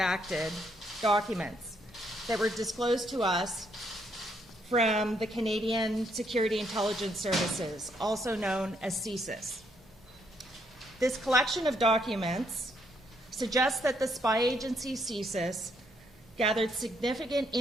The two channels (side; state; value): both; normal; correlation 0.73